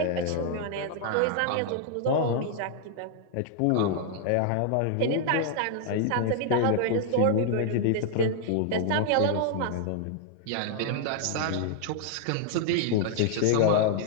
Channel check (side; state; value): both; different; correlation -0.01